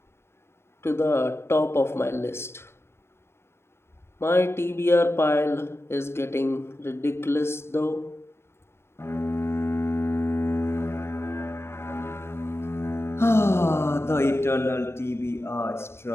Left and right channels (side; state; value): right; late; 0.12 ms